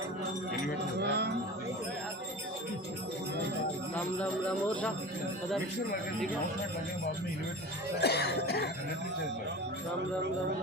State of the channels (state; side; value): normal; both; correlation 0.34